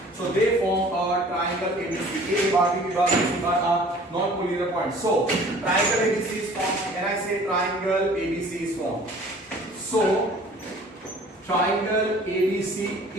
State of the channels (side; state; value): both; normal; correlation 0.50